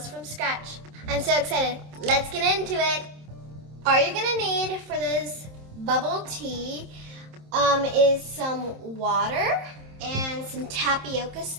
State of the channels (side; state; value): left; late; 27 ms